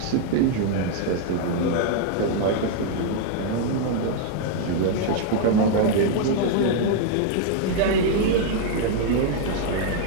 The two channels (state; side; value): different; both; correlation 0.00